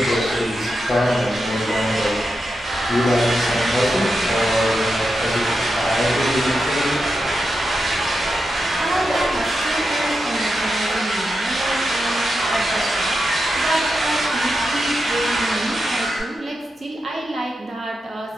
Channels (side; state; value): both; normal; correlation 0.88